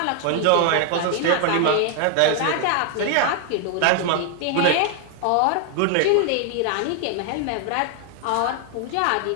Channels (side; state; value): both; different; correlation 0.00